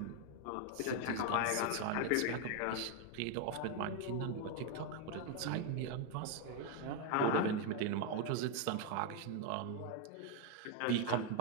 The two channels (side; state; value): both; different; correlation 0.01